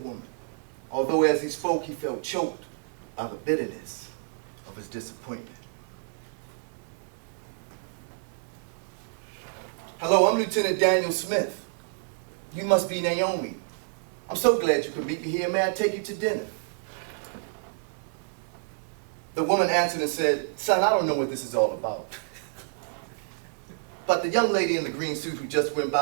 although as he spoke, he felt choked by the bitterness of his disappointment. Hello, I'm Lieutenant Daniel Smith. You must be Naomi. I'm so glad you could meet me here. May I take you to dinner? The woman answered and said, son, I don't know what this is all about. But the young lady in the green suit who just went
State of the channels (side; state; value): left; silent; digital silence